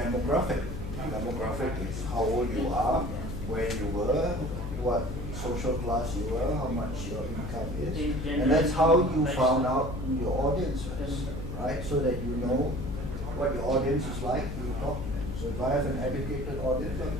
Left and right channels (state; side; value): noise; left; hum, 6 dB below the sound